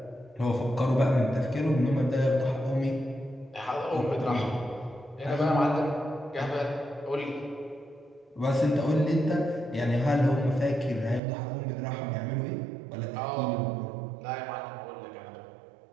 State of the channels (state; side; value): drops out; left; at 11.2 s